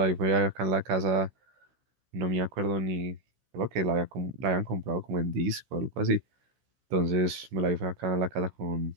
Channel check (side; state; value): left; late; 16 ms